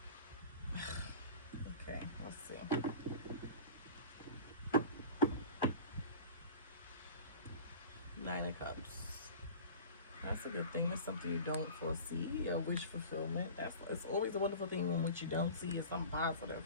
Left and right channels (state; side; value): inverted; both; correlation -0.37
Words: Okay, let's see. Nine of Cups. That's a good thing. It's something you don't foresee. A wish fulfillment. It's always a wonderful thing when what you don't see is something